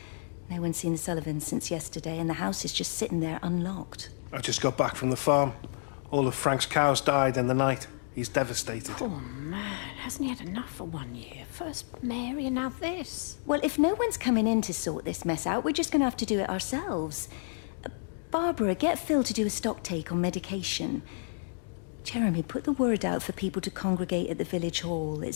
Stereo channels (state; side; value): silent; right; digital silence